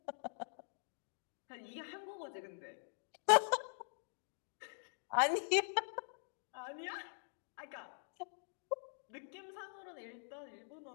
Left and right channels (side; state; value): right; silent; digital silence